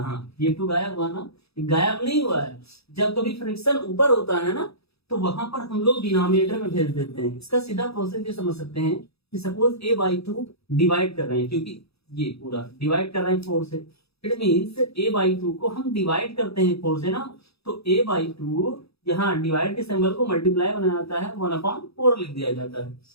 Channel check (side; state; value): right; late; 0.78 ms